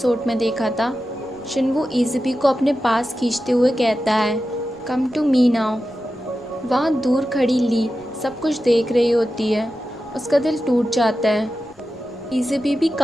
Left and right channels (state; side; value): noise; right; rumble, 28 dB below the sound